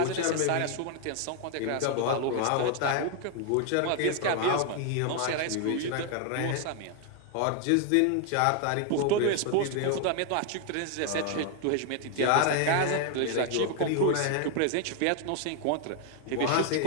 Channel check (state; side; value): different; both; correlation 0.00